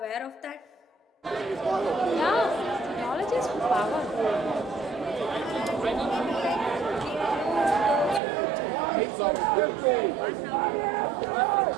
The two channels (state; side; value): drops out; left; at 8.2 s